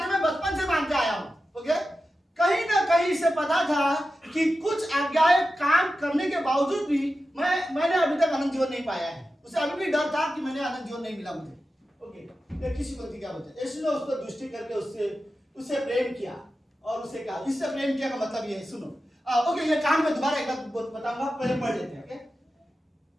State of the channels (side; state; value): both; normal; correlation 0.92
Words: मैं बचपन से मानते आया हूं, ओके? कहीं ना कहीं से पता था कि कुछ आज्ञाएं काम करने के बावजूद भी मैंने अभी तक अनंत जीवन नहीं पाया है। उसे अभी भी डर था कि मैंने अनंत जीवन नहीं मिला मुझे, ओके? ये किसी पंक्ति क्या बोलते हैं? यीशु ने उसको दृष्टि करके उससे प्रेम किया और उसे कहा, इससे प्रेम किया का मतलब ये है, सुनो, ओके, ये कहानी में दोबारा एक बार बताऊंगा, पहले पढ़ लेते हैं, ओके?